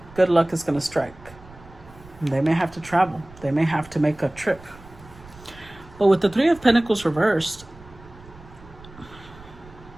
good luck is going to strike. And they may have to travel. They may have to make a trip. But with the 3 of Pentacles reversed,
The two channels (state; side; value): noise; right; rumble, 21 dB below the sound